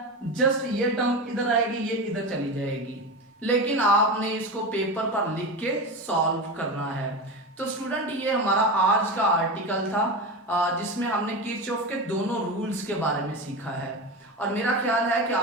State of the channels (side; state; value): both; normal; correlation 0.22